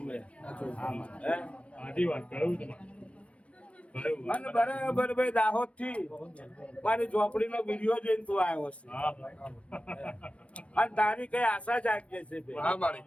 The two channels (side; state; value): right; late; 0.062 ms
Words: મેં અને બરાબર ભાઈ દાહોદ થી મારી ઝોપડી નો વિડીયો જોઈને તું આવ્યો છે અને તારી કઈ આશા જાગી છે ભાઈ